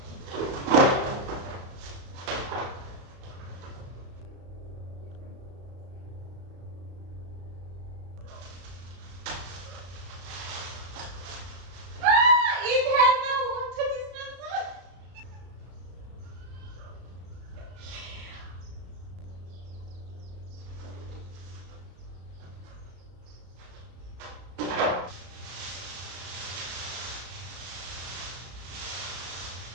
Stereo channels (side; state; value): left; late; 34 ms